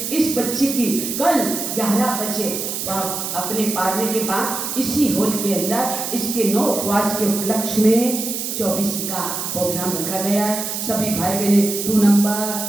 इस बच्चे की कल 11 बजे अपने पारने के बाद इसी हॉल के अंदर इसके 9 उपवास के उपलक्ष्य में 24 का प्रोग्राम रखा गया है। सभी भाई बहने 2 नंबर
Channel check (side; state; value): right; noise; hiss, 4 dB below the sound